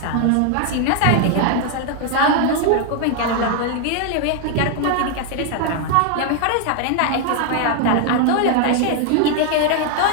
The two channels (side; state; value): both; different; correlation 0.00